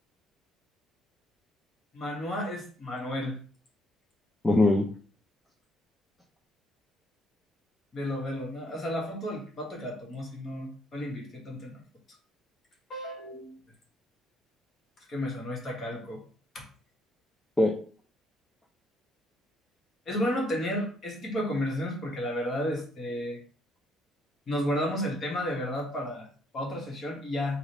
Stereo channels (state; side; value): normal; both; correlation 0.71